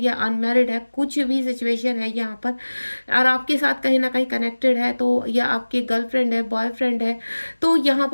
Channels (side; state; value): both; inverted; correlation -1.00